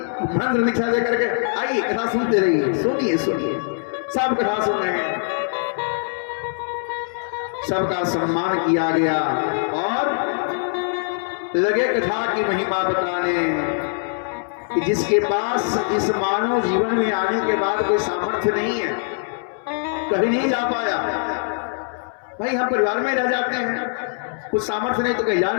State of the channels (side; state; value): right; silent; 64 dB below the other